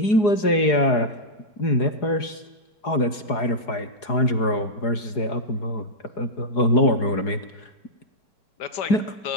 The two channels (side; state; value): right; late; 4.8 ms